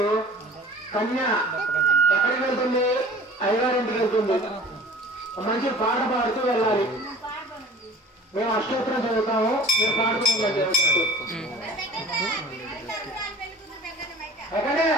కన్య ఎక్కడికి వెళ్తుంది? అయ్యగారింటికి వెళ్తుంది. మంచి పాట పాడుతూ వెళ్ళాలి. మేము అష్టోత్తరం చదువుతాము, మీరు పాడుతూ ఉండండి. ఎక్కడే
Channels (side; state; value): both; normal; correlation 0.45